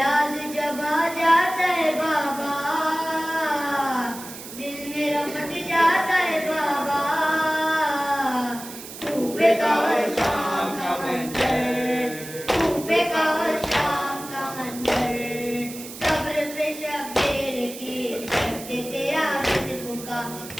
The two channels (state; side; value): noise; right; hiss, 13 dB below the sound